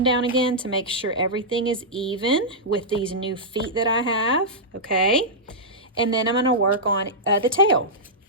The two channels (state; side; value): normal; both; correlation -0.10